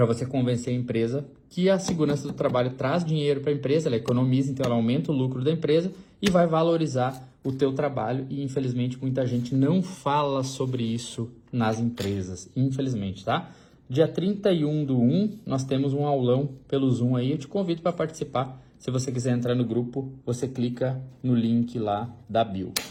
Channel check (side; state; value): both; identical; correlation 1.00